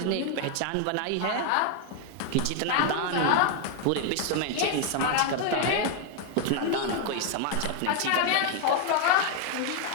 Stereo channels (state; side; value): different; both; correlation 0.00